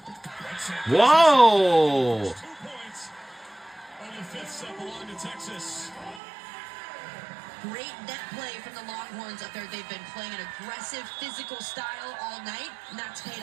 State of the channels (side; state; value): left; drops out; at 6.2 s